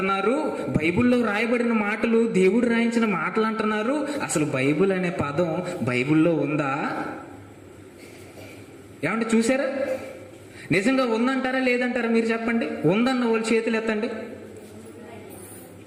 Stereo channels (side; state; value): both; identical; correlation 1.00